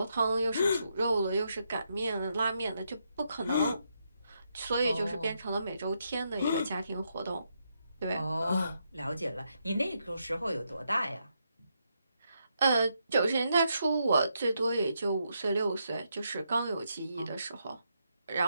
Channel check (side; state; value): both; inverted; correlation -0.80